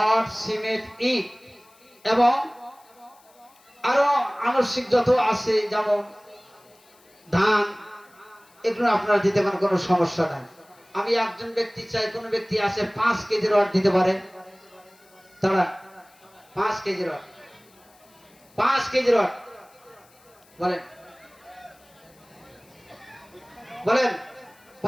সিমেন্ট ইট এবং আরো আনুষঙ্গিক যত আছে যেমন ধান, এগুলো আপনারা দিতে পারেন, কোনো সমস্যা নাই। আমি একজন ব্যক্তি চাই, কোন ব্যক্তি আছে 5 কেজি রড দিতে পারে? তারা 5 কেজি রড, 5 কেজি রড বলেন, বলেন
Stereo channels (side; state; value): left; noise; hiss, 29 dB below the sound